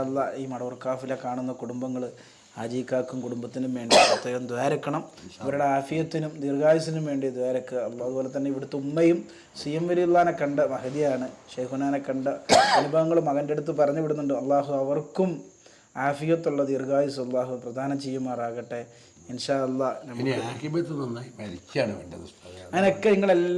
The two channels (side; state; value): both; identical; correlation 1.00